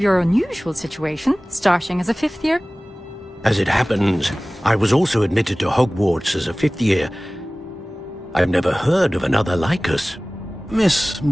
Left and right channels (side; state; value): both; normal; correlation 0.98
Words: unusual situation, starting as a 5th year. As it happens, I was also admitted to Hogwarts as a 5th year. I've never heard of another like us. Miss